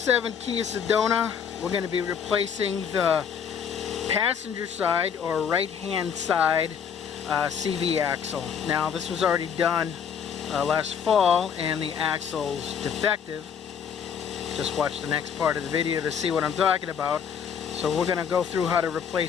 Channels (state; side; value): quieter; right; 7.5 dB